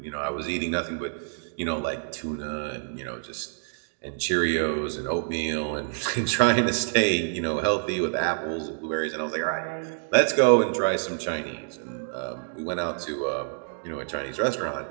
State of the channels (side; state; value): left; silent; digital silence